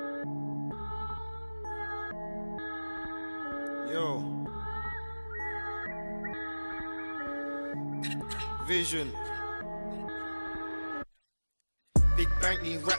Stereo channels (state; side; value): inverted; both; correlation -1.00